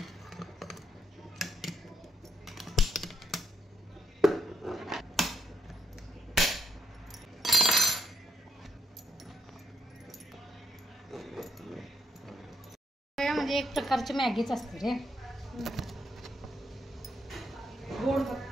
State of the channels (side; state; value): both; normal; correlation 0.78